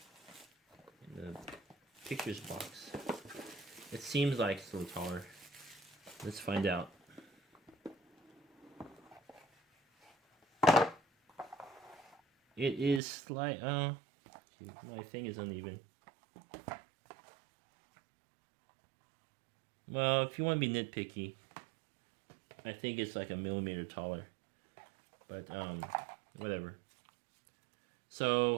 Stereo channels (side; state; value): left; drops out; at 13.0 s